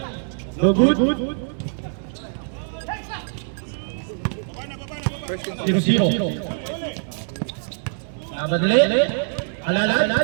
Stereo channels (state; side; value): silent; left; 63 dB below the other